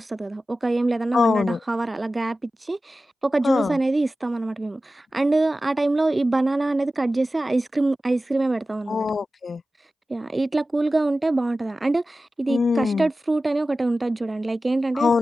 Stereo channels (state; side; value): normal; both; correlation 0.95